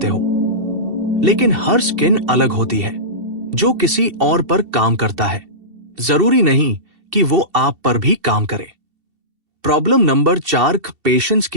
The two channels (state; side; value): late; left; 2.7 ms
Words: हो। लेकिन हर स्किन अलग होती है, जो किसी और पर काम करता है। जरूरी नहीं कि वो आप पर भी काम करे। प्रॉब्लम नंबर 4, पेशेंस